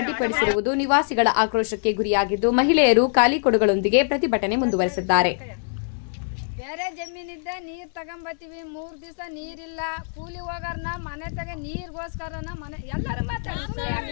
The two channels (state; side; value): silent; right; 63 dB below the other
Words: ನಿವಾಸಿಗಳ ಆಕ್ರೋಶಕ್ಕೆ ಗುರಿಯಾಗಿದ್ದು ಮಹಿಳೆಯರು ಖಾಲಿ ಕೊಡಗಳೊಂದಿಗೆ ಪ್ರತಿಭಟನೆ ಮುಂದುವರೆಸಿದ್ದಾರೆ. ಬೇರೆ ಜಮೀನಿದ್ದ ನೀರು ತಗೊಂಬತ್ತೀವಿ, 3 ದಿವಸ ನೀರಿಲ್ಲ, ಕೂಲಿ ಹೋಗಾರನ ಮನೆ ತಗ ನೀರಿಗೋಸ್ಕರನ ಮನೆ